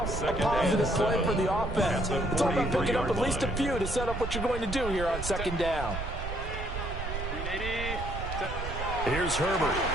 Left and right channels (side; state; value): right; noise; rumble, 5 dB below the sound